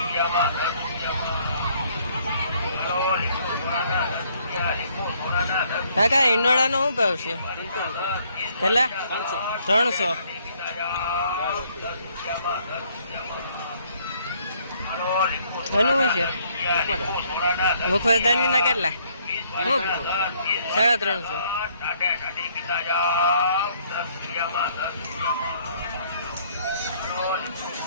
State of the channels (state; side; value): inverted; both; correlation -0.65